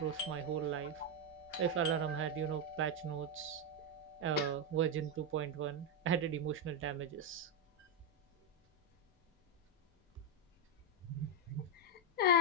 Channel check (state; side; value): normal; both; correlation 0.02